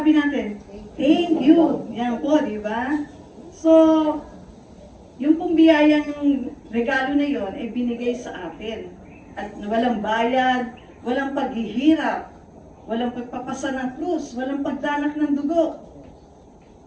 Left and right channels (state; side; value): identical; both; correlation 1.00